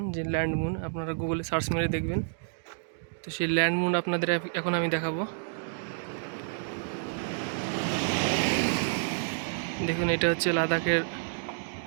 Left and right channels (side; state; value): left; silent; digital silence